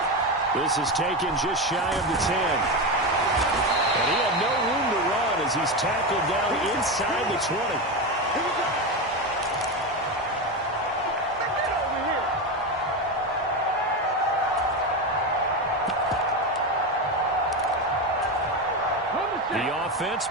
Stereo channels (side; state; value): both; normal; correlation 0.16